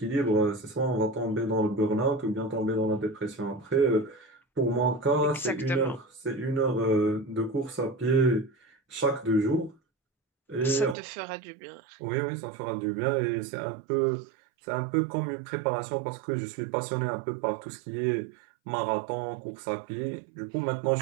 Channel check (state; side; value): drops out; left; at 11.0 s